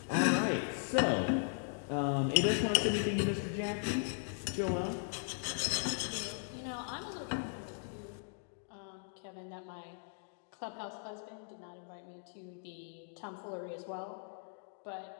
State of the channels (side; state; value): right; silent; digital silence